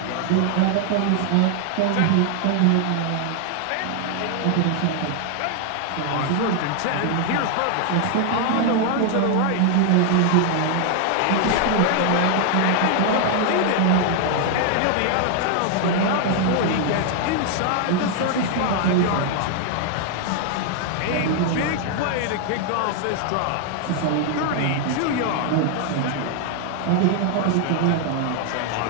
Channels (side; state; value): both; different; correlation 0.00